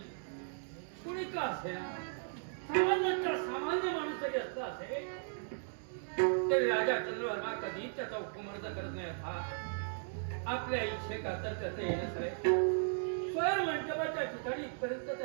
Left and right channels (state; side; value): silent; left; digital silence